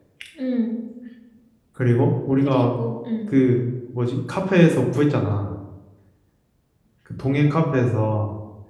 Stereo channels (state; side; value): identical; both; correlation 1.00